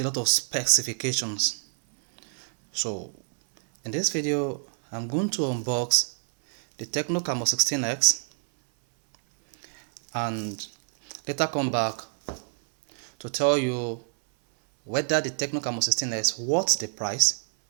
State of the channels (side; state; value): left; silent; 60 dB below the other